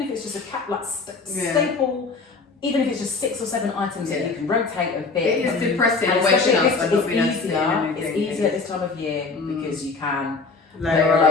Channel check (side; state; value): right; quieter; 4.2 dB